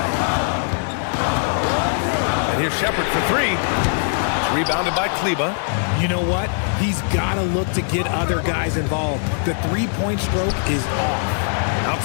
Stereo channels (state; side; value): silent; right; 65 dB below the other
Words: And here's Shepherd for 3. It's rebounded by Kleber. You know what? He's got to look to get other guys involved. The three-point stroke is off.